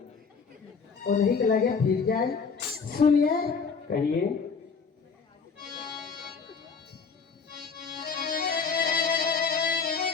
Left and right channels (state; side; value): quieter; right; 5.4 dB